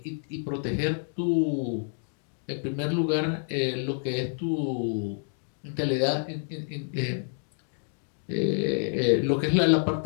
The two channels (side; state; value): right; silent; digital silence